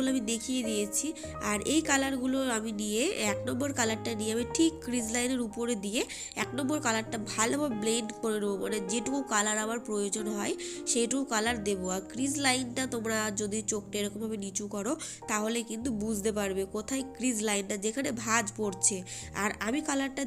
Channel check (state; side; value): identical; both; correlation 1.00